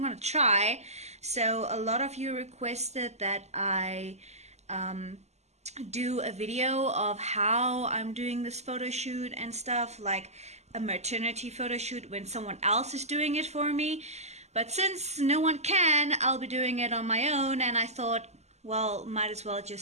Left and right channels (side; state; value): left; late; 0.32 ms